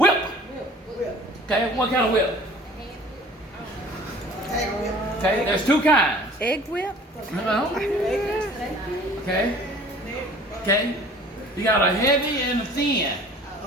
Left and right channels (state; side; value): normal; both; correlation 0.48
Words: Okay, what kind of whip? Okay, there's two kinds. Egg whip? No. Okay. Okay. You got a heavy and a thin.